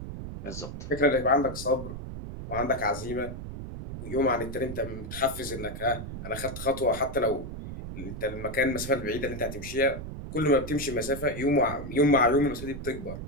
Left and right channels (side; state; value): right; noise; rumble, 8 dB below the sound